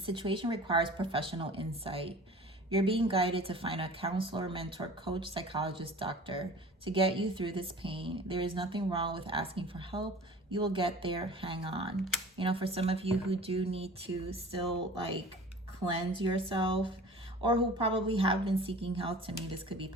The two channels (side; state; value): both; normal; correlation 0.42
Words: requires professional insight. You're being guided to find a counselor, mentor, coach, psychologist, doctor to get you through this pain. There is nothing wrong with asking for help. You will get there. Hang on. You know, for some of you who do need to still like cleanse yourself, or who probably have been seeking help, to me this could be